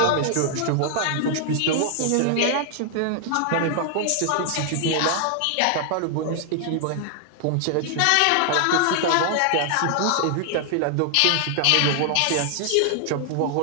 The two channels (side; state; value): both; different; correlation 0.00